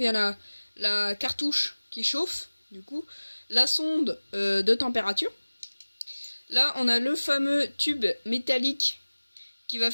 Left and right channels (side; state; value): both; inverted; correlation -1.00